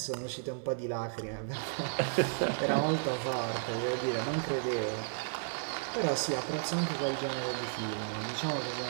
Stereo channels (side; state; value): left; silent; 55 dB below the other